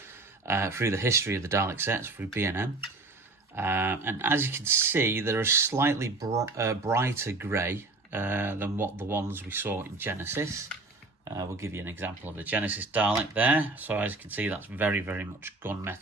through the history of the Dalek sets through B&M. And as you can see, they're a slightly brighter grey than what the ones we saw in Genesis. We'll give you an example of the Genesis Dalek there. So as you can see, that's very much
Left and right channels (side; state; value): left; quieter; 3.3 dB